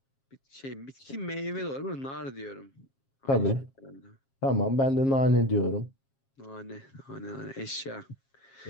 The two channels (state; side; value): late; right; 7.4 ms